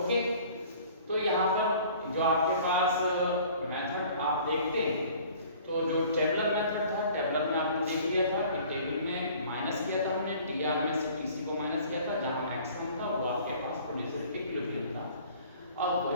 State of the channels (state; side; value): inverted; both; correlation -0.50